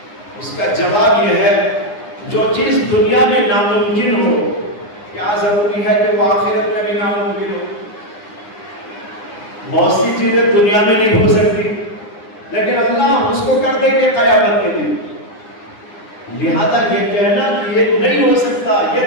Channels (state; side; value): late; right; 9.8 ms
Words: اس کا جواب یہ ہے جو چیز دنیا میں ناممکن ہو کیا ضروری ہے کہ وہ آخرت میں بھی ناممکن ہو؟ بہت سی چیزیں دنیا میں نہیں ہو سکتی لیکن اللہ اس کو کر دیں گے قیامت کے دن۔ لہذا یہ کہنا کہ یہ نہیں ہو سکتا یہ